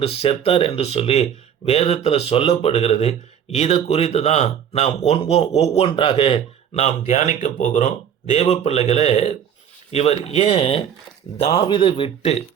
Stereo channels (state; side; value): quieter; left; 8.7 dB